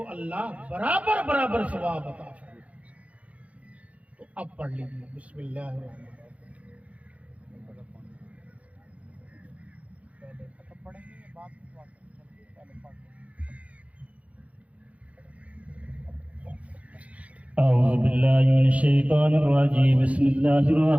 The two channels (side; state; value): left; late; 0.066 ms